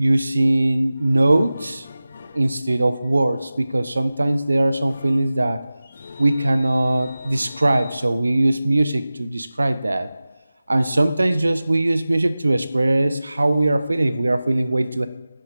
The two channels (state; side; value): inverted; both; correlation -0.97